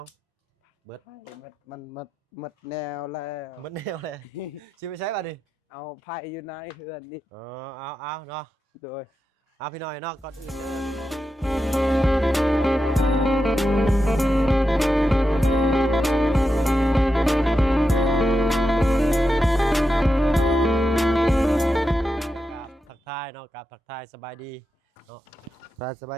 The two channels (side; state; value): both; normal; correlation 0.88